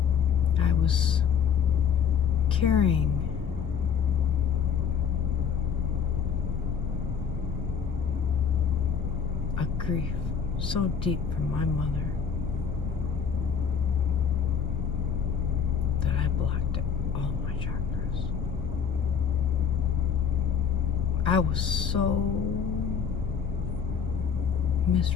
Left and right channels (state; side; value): quieter; right; 7.1 dB